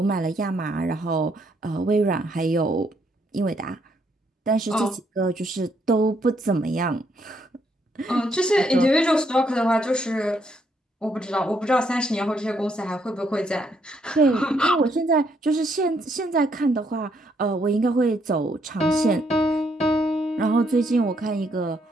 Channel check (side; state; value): both; normal; correlation 0.73